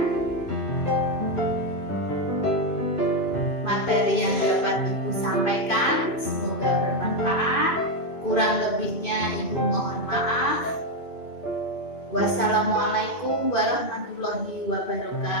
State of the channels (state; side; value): late; right; 2.6 ms